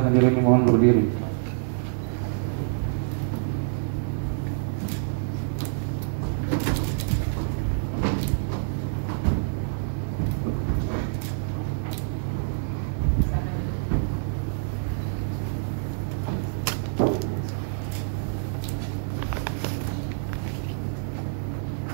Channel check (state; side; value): silent; left; digital silence